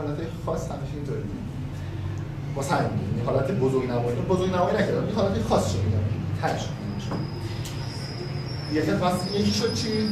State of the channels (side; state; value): both; identical; correlation 1.00